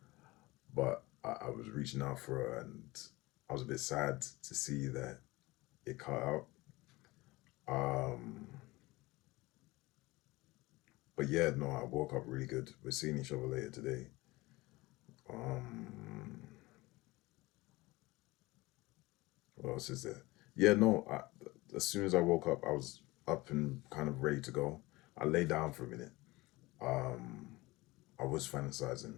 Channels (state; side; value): quieter; right; 21.2 dB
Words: But I was reaching out for her, and I was a bit sad to see that it cut out. Um, but yeah, no, I woke up really good. We're seeing each other later today. Um, what else is there? Yeah, no. As soon as I woke up, I was up and kind of ready to go. I lay down for a minute. Um, I was fantasizing